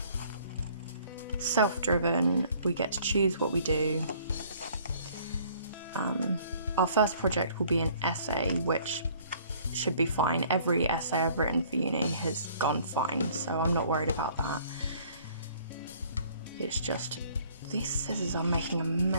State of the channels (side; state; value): both; inverted; correlation -0.57